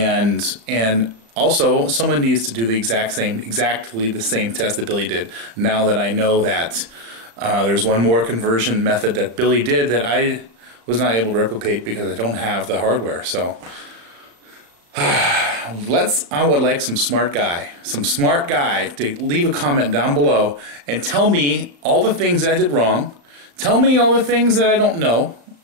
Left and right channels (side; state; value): left; late; 35 ms